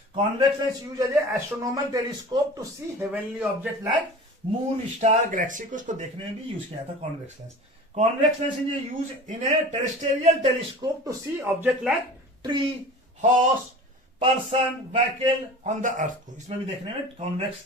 Convex lens use as a astronomical telescope to see heavenly object like moon, star, galaxy को, उसको देखने में भी यूज किया जाता है convex lens. Convex lens is use in a terrestrial telescope to see object like tree, horse, person, vehicle on the earth को, इसमें भी देखने में कॉन्वेक्स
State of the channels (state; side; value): normal; both; correlation 0.38